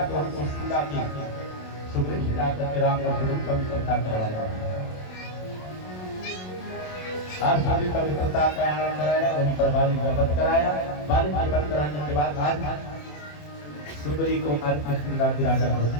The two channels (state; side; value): late; right; 27 ms